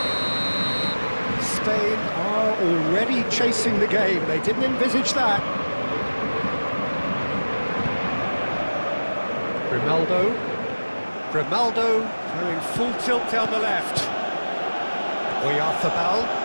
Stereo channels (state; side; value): inverted; both; correlation -1.00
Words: Spain are already chasing the game. They didn't envisage that. Grimaldo going full tilt down the left. Oyarzabal.